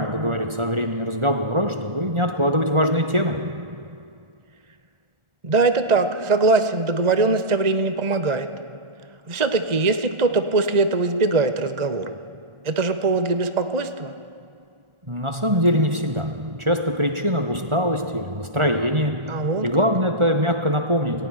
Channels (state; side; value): late; left; 1.4 ms